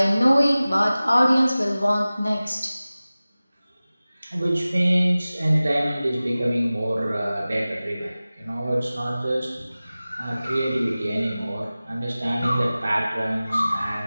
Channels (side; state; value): both; inverted; correlation -0.97